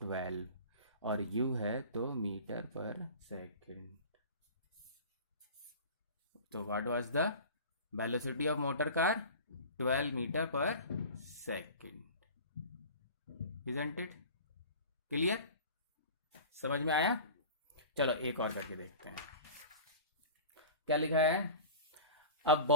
12, और u है तो मीटर पर सेकेंड। तो what was the velocity of motor car? 12 metre पर सेकेंड। Isn't it clear? समझ में आया? चलो एक और करके देखते हैं क्या लिखा है। A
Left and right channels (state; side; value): inverted; both; correlation -0.37